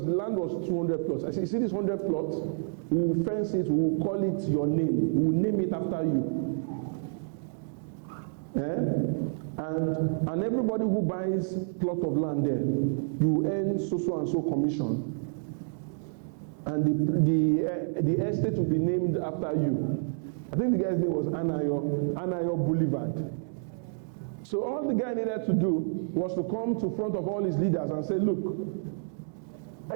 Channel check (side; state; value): left; silent; digital silence